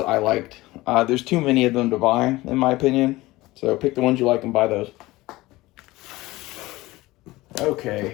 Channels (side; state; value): right; quieter; 19.2 dB